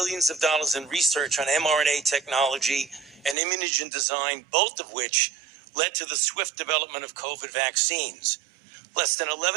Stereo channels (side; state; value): left; drops out; at 3.4 s